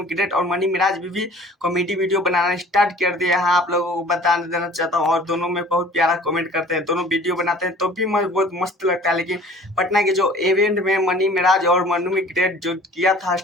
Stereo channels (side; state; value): both; normal; correlation 0.48